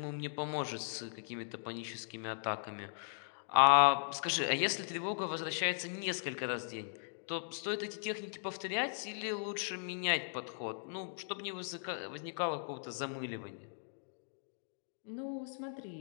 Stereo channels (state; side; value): silent; right; digital silence